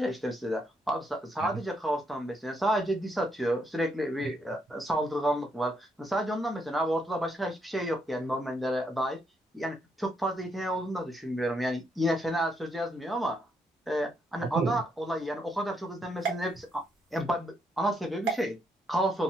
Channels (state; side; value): normal; both; correlation 0.76